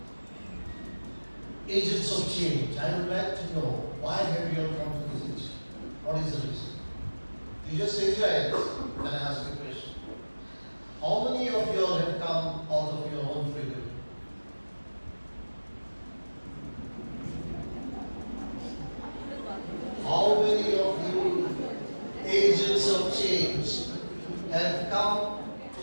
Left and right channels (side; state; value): both; inverted; correlation -1.00